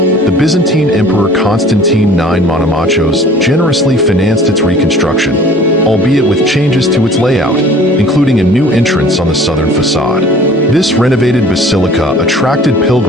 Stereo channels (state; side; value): normal; both; correlation 0.48